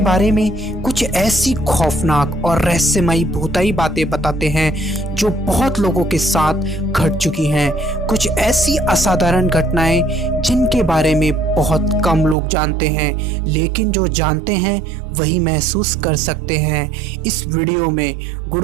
में कुछ ऐसी खौफनाक और रहस्यमयी भूताई बातें बताते हैं जो बहुत लोगों के साथ घट चुकी हैं। कुछ ऐसी असाधारण घटनाएं जिनके बारे में बहुत कम लोग जानते हैं, लेकिन जो जानते हैं वही महसूस कर सकते हैं। इस वीडियो में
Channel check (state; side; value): drops out; left; at 12.4 s